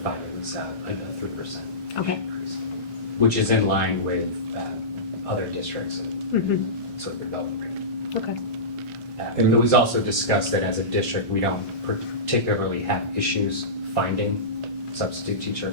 it was a 3% Okay. increase, which is in line with other districts and sort of development rate. Okay. And it was also discussed that as a district, we don't particularly have issues finding substitute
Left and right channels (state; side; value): normal; both; correlation -0.20